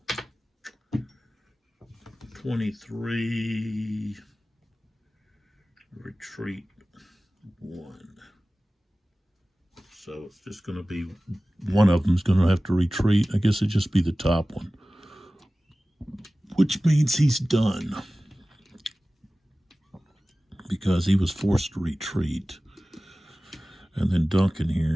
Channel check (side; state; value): both; normal; correlation 0.97